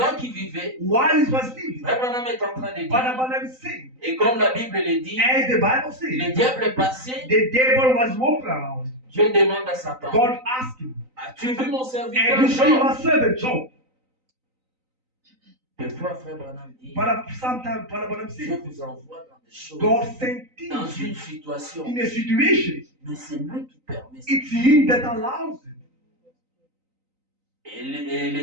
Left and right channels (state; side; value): late; left; 3.9 ms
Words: qu'il vivait, while he was living, Frère Branham est en train de dire, Barnabas is saying, et comme la Bible le dit, as the Bible le says, diable est passé, the devil was walking around. Dieu demande à Satan, God asked him, as-tu vu mon serviteur and you see Job? my servant Job. Des fois, Frère Branham dit, But sometimes Barnabas Dieu says, vous envoie dans des choses, God sent dans things une situation, in a situation. mais c'est lui qui permet ça. It's him that allows it. Et